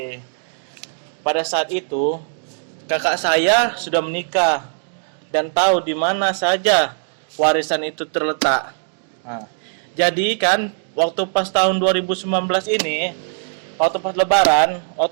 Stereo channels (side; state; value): left; silent; digital silence